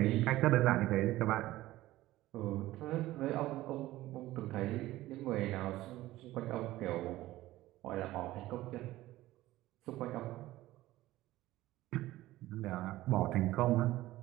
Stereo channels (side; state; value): left; quieter; 16.4 dB